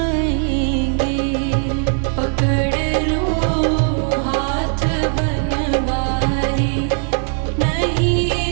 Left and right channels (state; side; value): silent; left; 56 dB below the other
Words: पकड़ लो हाथ बनवारी, नहीं